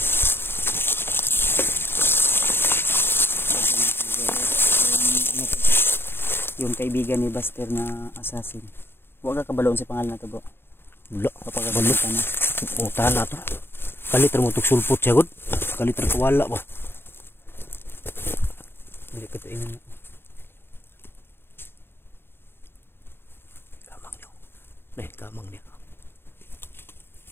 Yung kaibigan ni Buster na assassin. Huwag ka kabaloon sa pangalan na to bro. Wala. Kapagabalot ka na. O tana to. Kaliter mo tuk sulpot siya god. Kaliter kawala ba. Hindi ko ito inan. Kamang niyo. Nah, kamang niya.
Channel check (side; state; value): right; late; 0.11 ms